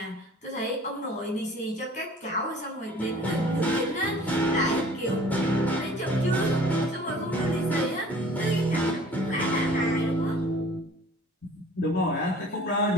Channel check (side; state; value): both; normal; correlation 0.49